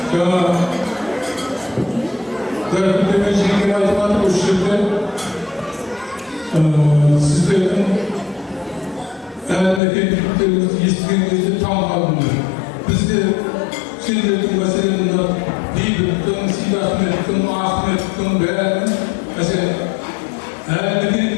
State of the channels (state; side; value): drops out; right; at 9.8 s